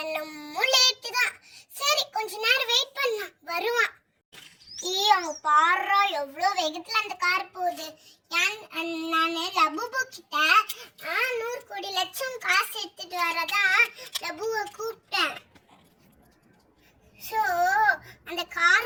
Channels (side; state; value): both; identical; correlation 1.00